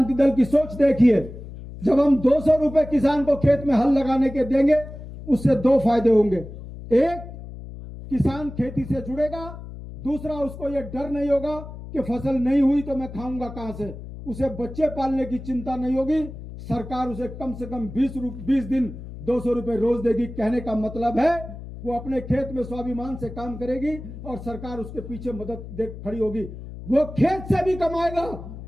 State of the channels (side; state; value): left; noise; hum, 12 dB below the sound